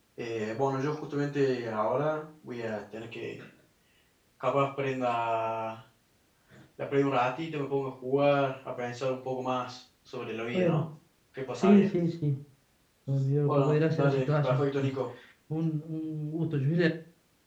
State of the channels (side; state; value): both; identical; correlation 1.00